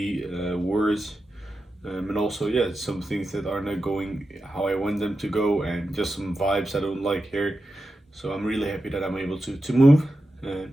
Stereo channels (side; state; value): both; normal; correlation 0.91